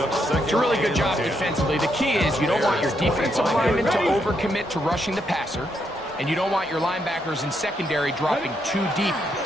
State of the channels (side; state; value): both; normal; correlation 0.78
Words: a really good job defensively. The key is you don't want your defensive linemen to overcommit to rushing the passer, and you don't want your linebackers in secondary dropping too deep